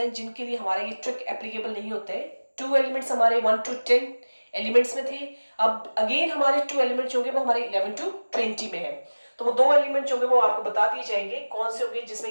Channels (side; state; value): both; inverted; correlation -1.00